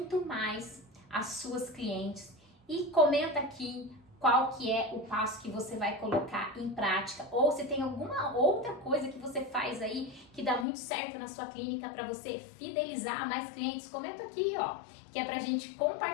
mais as suas clientes. E comenta aqui qual que é o passo que você vai colocar em prática, ou se tem alguma outra coisa que você faz aí que dá muito certo na sua clínica para você fidelizar mais clientes. Comenta aqui, ó, que é pra gente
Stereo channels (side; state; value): right; drops out; at 10.7 s